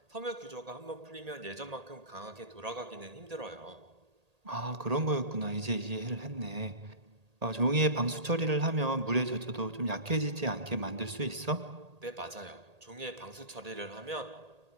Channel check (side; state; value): left; late; 1.8 ms